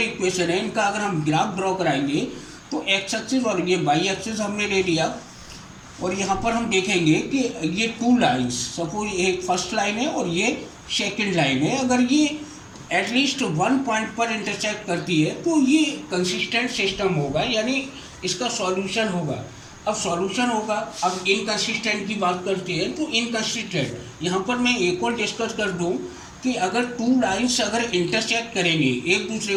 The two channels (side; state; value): both; identical; correlation 1.00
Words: इक्वेशन है इनका अगर हम ग्राफ ड्रॉ कराएंगे तो एक्स एक्सिस और ये वाई एक्सिस हमने ले लिया, और यहाँ पर हम देखेंगे कि ये टू लाइन्स, सपोज एक फर्स्ट लाइन है और ये सेकेंड लाइन है, अगर ये एटलीस्ट वन पॉइंट पर इंटरसेक्ट करती है तो ये कंसिस्टेंट सिस्टम होगा, यानी इसका सॉल्यूशन होगा। अब सॉल्यूशन होगा। अब इनकंसिस्टेंट की बात करते हैं तो इनकंसिस्टेंट, यहाँ पर मैं एक और डिस्कस कर दूँ कि अगर टू लाइन्स अगर इंटरसेक्ट करेंगे, एक दूसरे